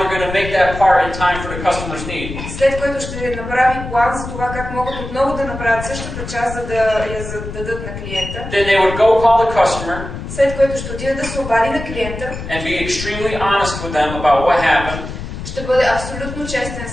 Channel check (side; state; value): left; noise; rumble, 8 dB below the sound